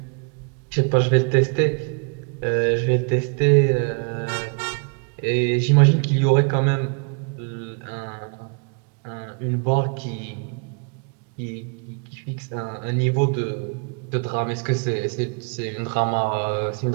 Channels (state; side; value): quieter; left; 37.8 dB